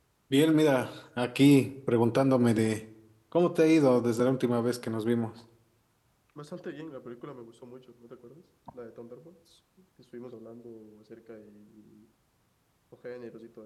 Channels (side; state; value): both; identical; correlation 1.00